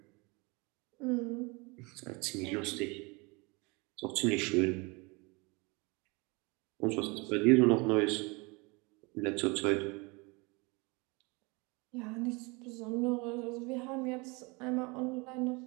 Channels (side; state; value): left; quieter; 27.9 dB